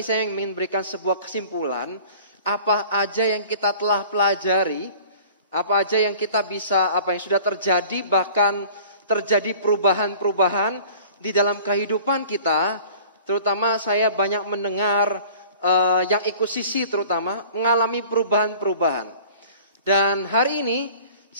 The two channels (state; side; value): inverted; both; correlation -0.47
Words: saya ingin memberikan sebuah kesimpulan apa aja yang kita telah pelajari, apa aja yang kita bisa, apa yang sudah terjadi, bahkan terjadi perubahan-perubahan di dalam kehidupan kita. Terutama saya banyak mendengar yang ikut sisi terutama mengalami perubahan-perubahan. Dan hari ini